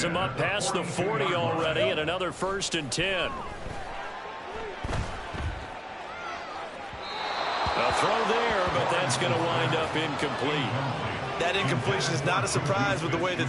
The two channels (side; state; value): both; identical; correlation 1.00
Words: him up past the 40 already, and another 1st and 10. A throw there, but that's going to wind up incomplete. That incompletion is not a surprise with the way that